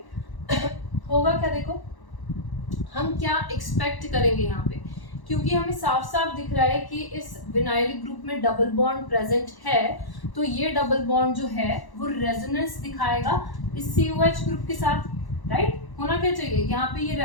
होगा क्या, देखो हम क्या एक्सपेक्ट करेंगे यहाँ पे, क्योंकि हमें साफ साफ दिख रहा है कि इस विनाइलिक ग्रुप में डबल बॉन्ड प्रेजेंट है, तो ये डबल बॉन्ड जो है वो रेजोनेंस दिखाएगा इस COH ग्रुप के साथ, राइट। होना क्या चाहिए, यहाँ पे ये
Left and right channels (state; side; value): late; right; 1.1 ms